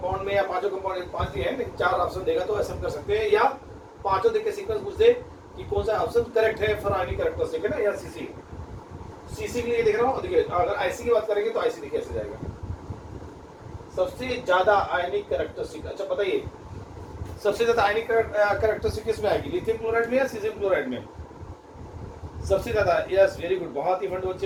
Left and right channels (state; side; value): identical; both; correlation 1.00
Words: में या पांचों कंपाउंड, 5 दिए हैं लेकिन 4 ऑप्शन देगा तो ऐसा हम कर सकते हैं, या पांचों देख के सीक्वेंस पूछ दे कि कौन सा ऑप्शन करेक्ट है फॉर आयनिक कैरेक्टरिस्टिक, है ना, या सीसी। सीसी के लिए देख रहा हूँ, देखिए अगर आईसी की बात करेंगे तो आईसी देखिए ऐसे जाएगा, सबसे ज्यादा आयनिक कैरेक्टरिस्टिक। अच्छा बताइए सबसे ज्यादा आयनिक कैरेक्टरिस्टिक किसमें आएगी, लिथियम क्लोराइड में या सीजियम क्लोराइड में? सबसे ज्यादा, यस वेरी गुड, बहुत ही फंड